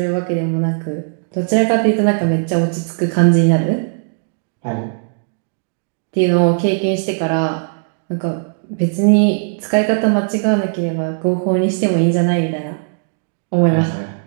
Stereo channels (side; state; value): left; silent; digital silence